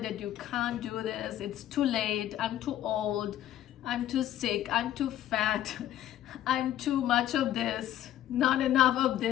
that you can't do this, it's too late, I'm too old, I'm too sick, I'm too fat, I'm too much of this, not enough of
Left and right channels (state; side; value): quieter; right; 12.3 dB